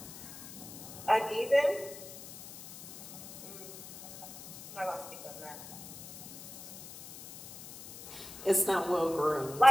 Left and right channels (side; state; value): left; noise; hiss, 13 dB below the sound